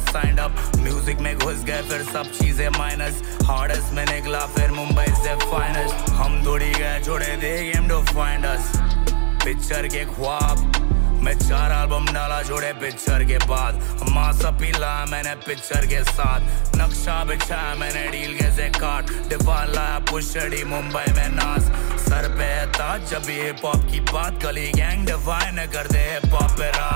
अप, म्यूजिक में घुस गए फिर सब चीजें माइनस, हार्डेस्ट में निकला फिर मुंबई से फाइनेस्ट, हम दौड़ी गए छोड़े दे game to find us. Picture के ख्वाब मैं 4 एल्बम डाला जोड़े पिक्चर के बाद, मासा पीला मैंने पिक्चर के साथ, नक्शा बिछाया मैंने डील के से काट, डिफान लाया पुशड़ी मुंबई में नाज, सर पे है ताज जब ये हिप हॉप की बात, गली गैंग डिफाइन कर दे हिप हॉप पे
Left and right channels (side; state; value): left; silent; digital silence